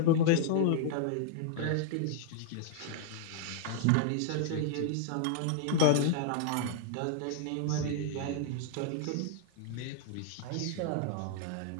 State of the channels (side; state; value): both; different; correlation -0.01